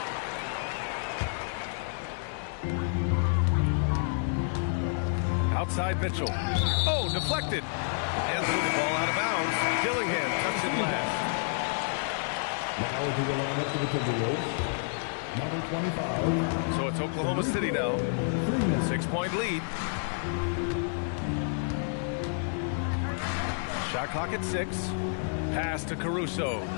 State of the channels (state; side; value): silent; right; digital silence